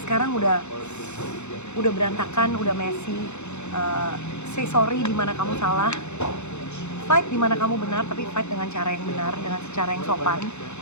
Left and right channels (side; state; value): right; late; 0.82 ms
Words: sekarang udah berantakan, udah messy. Say sorry di mana kamu salah. Fight di mana kamu benar, tapi fight dengan cara yang benar, dengan cara yang sopan.